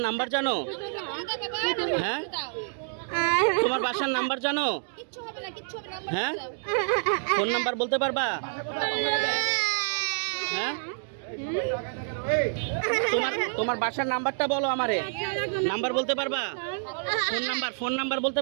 নাম্বার জানো? হ্যাঁ, তোমার বাসার নাম্বার জানো? হ্যাঁ, ফোন নাম্বার বলতে পারবা? হ্যাঁ, তোমার বাসার নাম্বারটা বলো আমারে। নাম্বার বলতে পারবা? ফোন নাম্বার বলতে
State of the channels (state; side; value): silent; left; digital silence